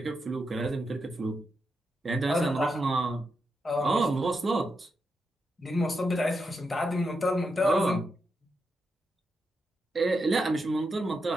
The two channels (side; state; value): both; normal; correlation 0.85